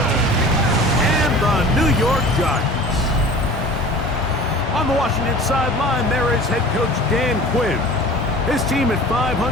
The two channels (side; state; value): both; normal; correlation 0.41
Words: and the New York Giants. On the Washington sideline, there is head coach Dan Quinn. His team at 500,